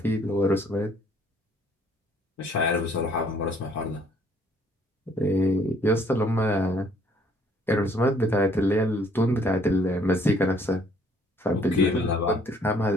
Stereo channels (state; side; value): normal; both; correlation 0.62